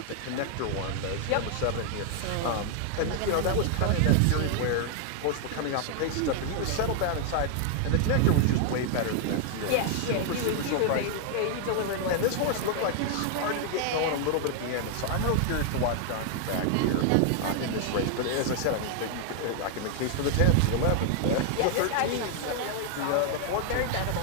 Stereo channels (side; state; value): both; different; correlation 0.00